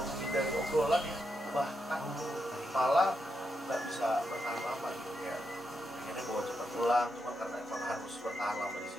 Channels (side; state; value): both; normal; correlation 0.84